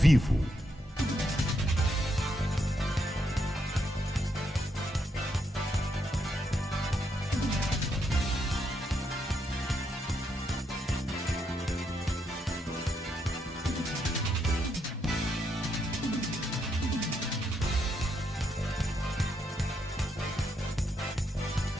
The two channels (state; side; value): normal; both; correlation 0.78